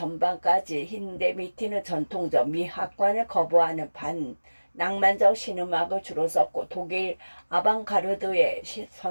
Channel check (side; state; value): both; inverted; correlation -1.00